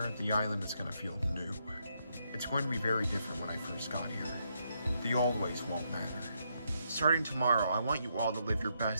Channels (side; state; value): both; inverted; correlation -0.78